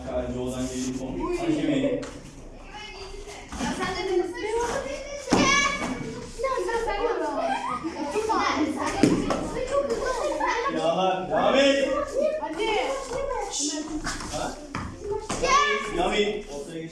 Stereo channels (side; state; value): both; identical; correlation 1.00